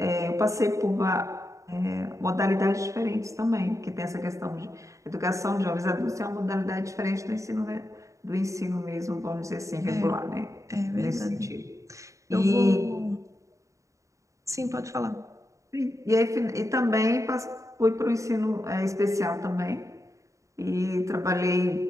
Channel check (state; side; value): late; left; 0.15 ms